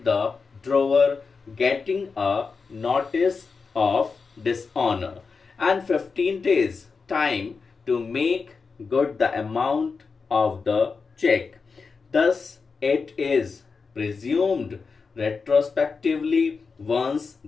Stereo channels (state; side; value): quieter; right; 4.9 dB